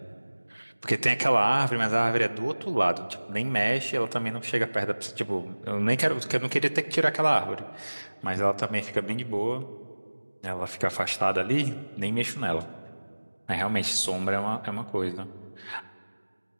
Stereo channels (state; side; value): inverted; both; correlation -1.00